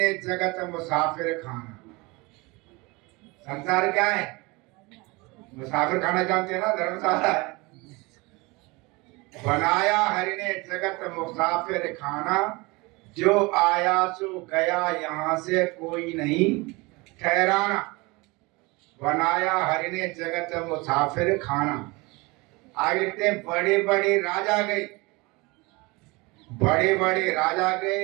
जगत मुसाफिर खाना। संसार क्या है, मुसाफिर खाना जानते हैं ना, धर्मशाला है। बनाया हरि ने जगत मुसाफिर खाना, जो आया सो गया यहाँ से कोई नहीं ठहराना। बनाया हरि ने जगत मुसाफिर खाना। आगे लिखते हैं बड़े बड़े राजा गए, बड़े बड़े राजा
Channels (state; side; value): quieter; left; 24.9 dB